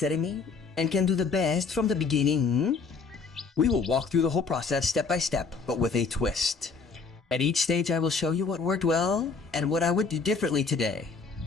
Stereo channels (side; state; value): right; quieter; 4.8 dB